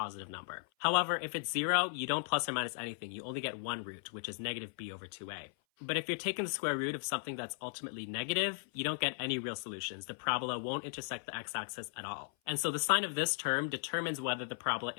number. However, if it's 0, you don't plus or minus anything. You only get one root, which is negative b over 2a. But if you're taking the square root of something that's ultimately negative, you don't get any real solutions. The parabola won't intersect the x-axis at all. And so the sign of this term determines whether the parabola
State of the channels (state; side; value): silent; right; 53 dB below the other